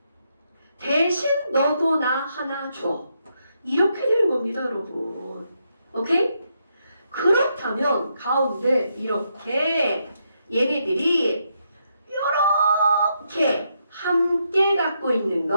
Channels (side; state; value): both; inverted; correlation -0.79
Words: 대신 너도 나 하나 줘. 이렇게 되는 겁니다, 여러분. 오케이? 그렇다면 가운데 이렇게 얘네들이 이렇게 함께 갖고 있는